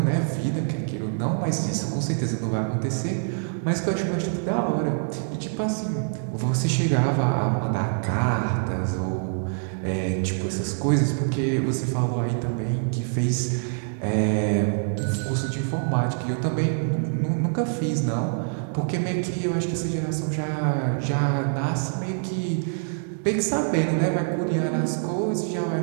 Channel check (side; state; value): left; silent; 62 dB below the other